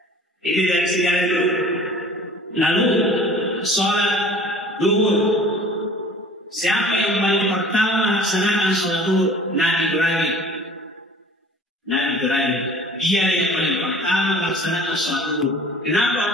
itu dari sejarah dulu. Lalu sholat duhur. Siapa yang paling pertama laksanakan sholat duhur? Nabi Ibrahim. Dia yang paling pertama laksanakan sholat duhur.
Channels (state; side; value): normal; both; correlation 0.47